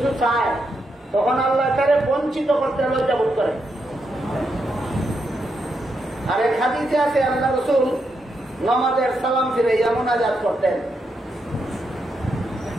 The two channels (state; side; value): normal; both; correlation 0.82